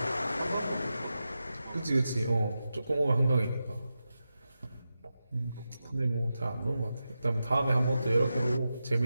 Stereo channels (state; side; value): inverted; both; correlation -0.91